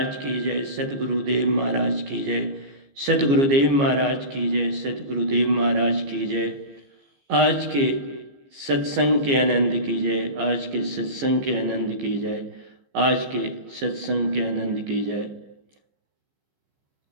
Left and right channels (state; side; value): late; left; 14 ms